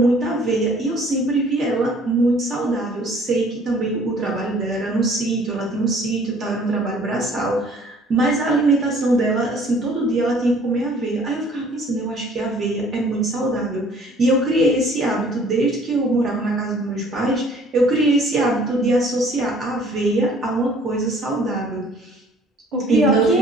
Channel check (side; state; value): both; normal; correlation 0.55